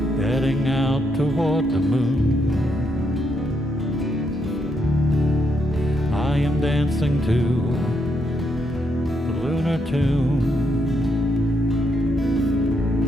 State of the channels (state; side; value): normal; both; correlation 0.78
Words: heading out toward the moon. I am dancing to the lunar tune.